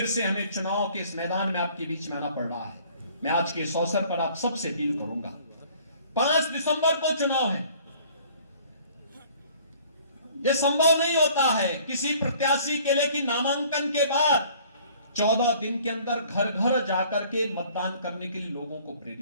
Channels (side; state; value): both; inverted; correlation -0.54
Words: से हमें चुनाव के इस मैदान में आपके बीच में आना पड़ रहा है। मैं आज के इस अवसर पर आप सबसे अपील करूंगा, 5 दिसंबर को चुनाव है। यह संभव नहीं होता है किसी प्रत्याशी के लिए कि नामांकन के बाद 14 दिन के अंदर घर घर जाकर के मतदान करने के लिए लोगों को